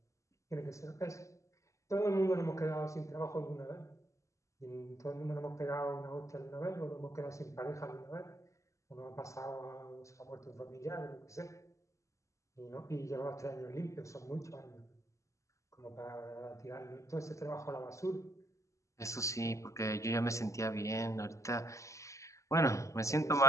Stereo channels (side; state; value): right; late; 0.15 ms